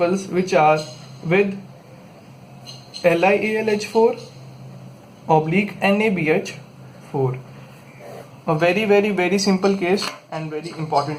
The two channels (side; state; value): both; identical; correlation 1.00